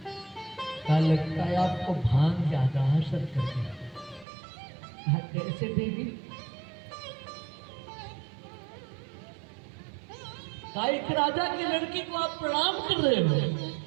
क्या लगता है आपको भांग ज्यादा असर कर गया? कैसे देवी? एक राजा की लड़की को आप प्रणाम कर रहे हो।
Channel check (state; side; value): drops out; left; at 4.2 s